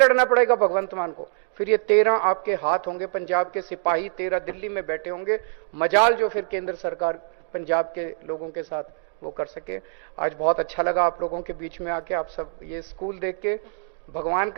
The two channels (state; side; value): silent; left; digital silence